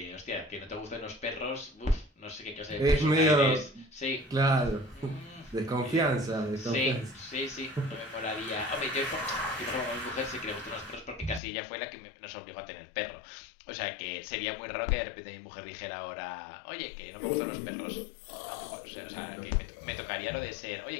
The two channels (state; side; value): drops out; right; at 11.4 s